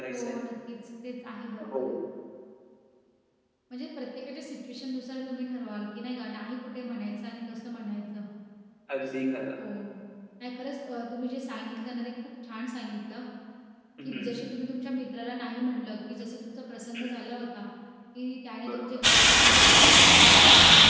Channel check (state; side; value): identical; both; correlation 1.00